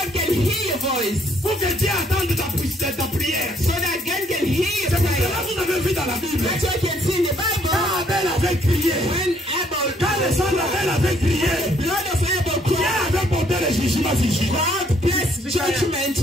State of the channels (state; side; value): normal; both; correlation 0.66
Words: can hear your voice. Pour que Dieu attende ta prière. So that God can hear your C'est pour prayer. cela que vous avez vu dans la Bible. That's what you can see in the Bible. Quand Abel avait crié, When Abel, quand le sang d'Abel avait crié, blood of Abel Dieu cried, avait porté le jugement sur Judas. God placed judgment